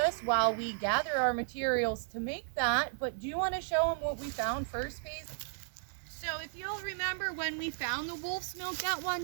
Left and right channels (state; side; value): silent; left; 55 dB below the other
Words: while we gather our materials to make that. But do you want to show them what we found first, Paige? So if you'll remember when we found the wolf's milk that